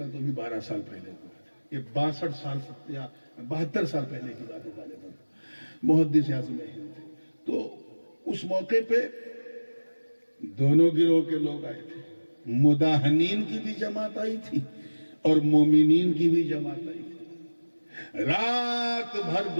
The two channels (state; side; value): inverted; both; correlation -1.00